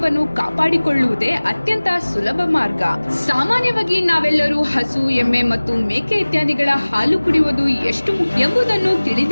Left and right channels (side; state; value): both; inverted; correlation -1.00